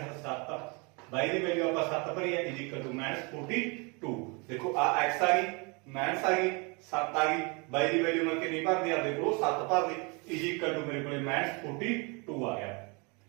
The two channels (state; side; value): quieter; left; 30.7 dB